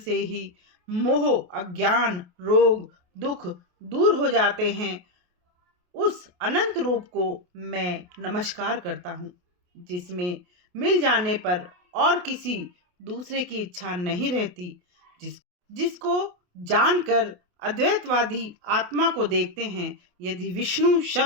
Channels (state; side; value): late; left; 28 ms